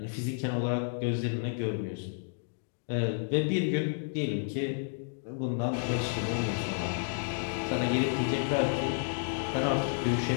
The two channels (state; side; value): silent; right; digital silence